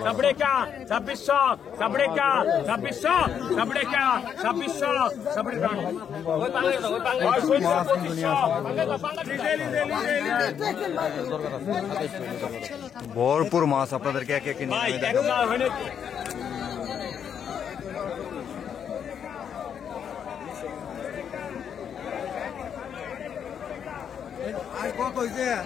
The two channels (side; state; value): right; quieter; 8.1 dB